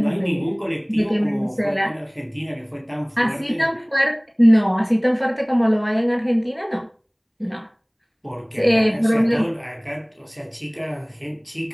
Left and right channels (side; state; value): both; identical; correlation 1.00